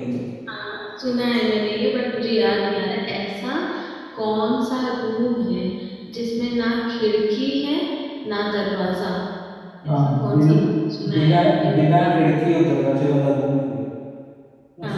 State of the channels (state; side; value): identical; both; correlation 1.00